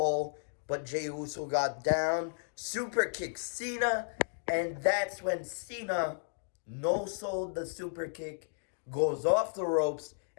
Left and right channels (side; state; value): right; silent; digital silence